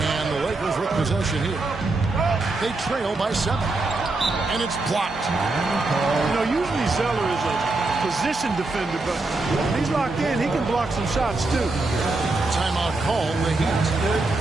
the Lakers with possession here. They trail by 7. And it's blocked. You know, usually Zeller is a position defender, but when he's locked in, he can block some shots too. Timeout call, the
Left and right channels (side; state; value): left; quieter; 3.3 dB